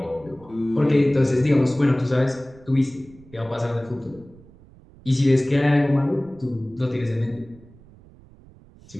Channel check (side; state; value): right; noise; rumble, 24 dB below the sound